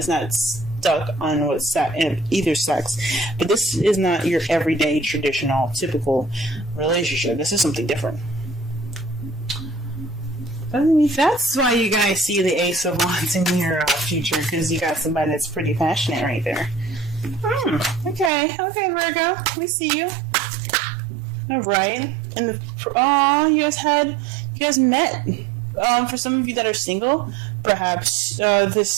not stuck on either sex. But this is not your everyday, traditional, typical relationship. This is something different. That's why you guys see the Ace of Wands in your future, because you got somebody that's pretty passionate right there. Okay, Virgo, we see you. All right, and you guys met. For some of you that are single, perhaps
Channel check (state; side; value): drops out; left; at 18.3 s